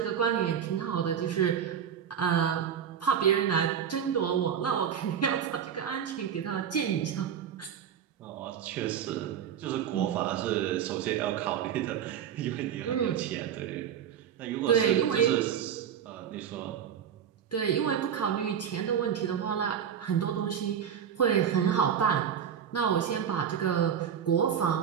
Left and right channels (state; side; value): quieter; left; 8.5 dB